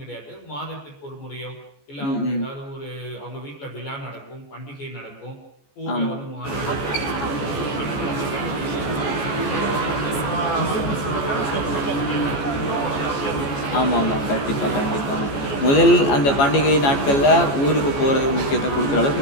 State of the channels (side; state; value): right; late; 14 ms